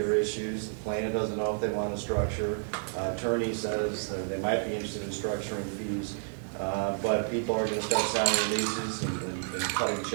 issues. The plaintiff doesn't know if they want to structure. Attorney says that they might be interested in structuring fees, but people are going to start signing releases and cutting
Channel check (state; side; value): silent; left; digital silence